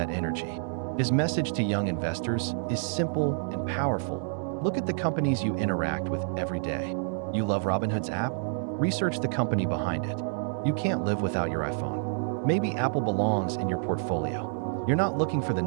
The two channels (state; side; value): silent; left; 59 dB below the other